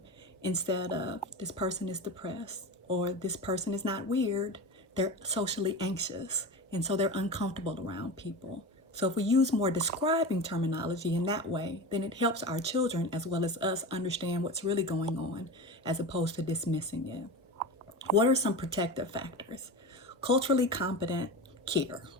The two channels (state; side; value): normal; both; correlation 0.27